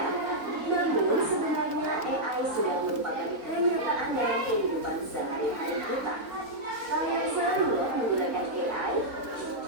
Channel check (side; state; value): left; late; 4.0 ms